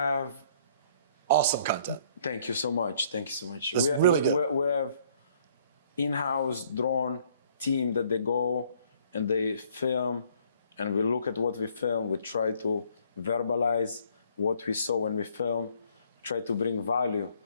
Awesome content. Thank you so much. Thank you so much. That's really good. We have in-house drone team that they go and they film, and we look at what we film. We try to verbalize what we saw when we film. Try to bring value.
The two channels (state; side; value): inverted; both; correlation -0.62